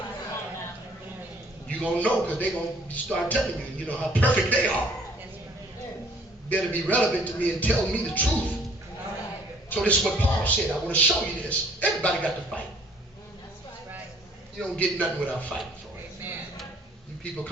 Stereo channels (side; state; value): both; normal; correlation 0.58